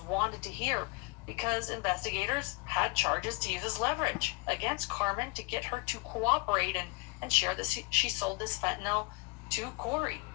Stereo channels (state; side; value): quieter; right; 28.0 dB